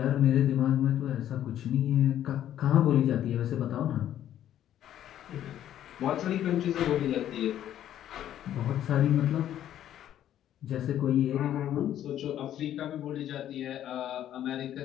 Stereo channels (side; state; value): right; quieter; 11.4 dB